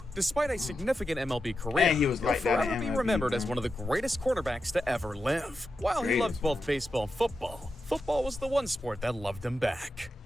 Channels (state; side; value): normal; both; correlation 0.89